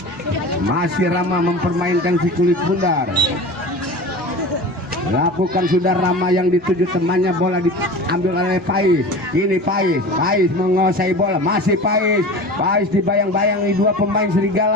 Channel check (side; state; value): both; normal; correlation 0.34